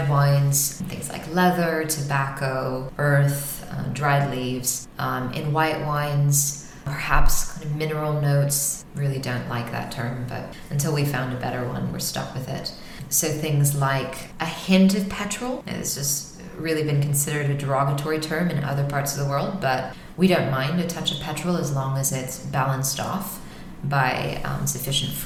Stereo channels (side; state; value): both; identical; correlation 1.00